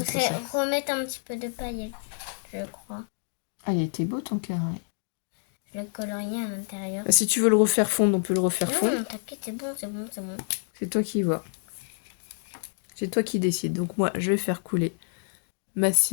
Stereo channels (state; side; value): silent; right; digital silence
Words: remettre un petit peu de paillettes, je crois. Ah, il était beau ton carré. Je le colorie à l'intérieur. Ah, si tu veux le refaire fondre, on peut le refaire fondre. Non, t'inquiète, c'est bon. C'est toi qui vois. C'est toi qui décides. Donc moi, je vais faire couler ma